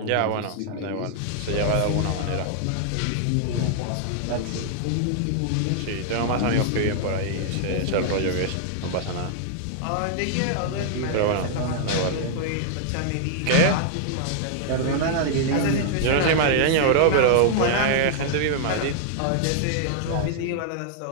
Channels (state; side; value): different; both; correlation -0.01